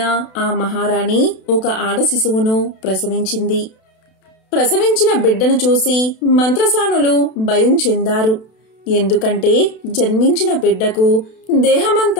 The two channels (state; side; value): late; right; 32 ms